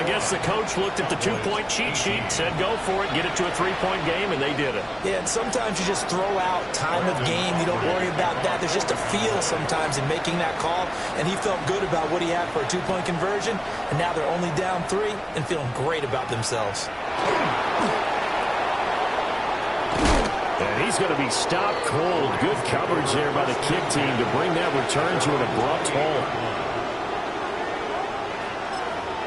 guess the coach looked at the 2-point cheat sheet, said go for it, get it to a 3-point game, and they did it. Yeah, and sometimes you just throw out time of game. You don't worry about that. There's just a feel sometimes in making that call, and he felt good about what he had for a 2-point conversion, and now they're only down 3 and feeling great about themselves. And he's going to be stopped cold. Good coverage there by the kick team to bring that return to an abrupt halt.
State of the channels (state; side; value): identical; both; correlation 1.00